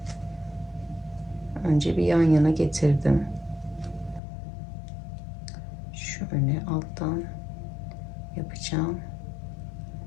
önce bir yan yana getirdim. Şöyle alttan yapacağım.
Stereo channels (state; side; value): drops out; right; at 4.2 s